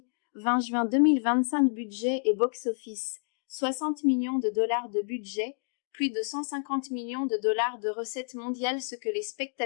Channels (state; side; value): silent; right; digital silence